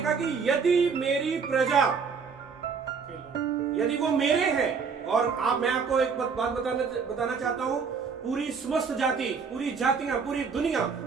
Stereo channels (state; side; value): quieter; left; 5.6 dB